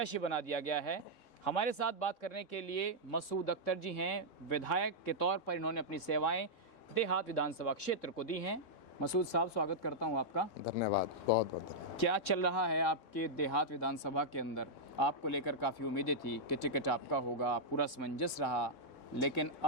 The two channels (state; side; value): late; right; 3.6 ms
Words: बना दिया गया है। हमारे साथ बात करने के लिए मसूद अख्तर जी हैं। विधायक के तौर पर इन्होंने अपनी सेवाएं देहात विधानसभा क्षेत्र को दी हैं। मसूद साहब, स्वागत करता हूं आपका। धन्यवाद, बहुत बहुत धन्यवाद। क्या चल रहा है आपके देहात विधानसभा के अंदर? आपको लेकर काफ़ी उम्मीदें थी कि टिकट आपका होगा, पूरा समंजस रहा, लेकिन